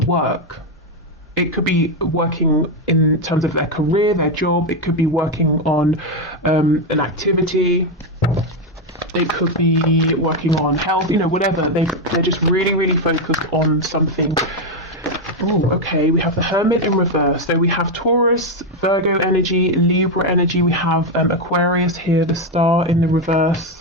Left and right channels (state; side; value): normal; both; correlation 0.06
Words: It could be working in terms of their career, their job. It could be working on an activity. It could be working on health, you know, whatever. They're just really, really focused on something. Oh, okay, we have the Hermit in reverse. So we have Taurus, Virgo energy, Libra energy. We have Aquarius here, the Star in the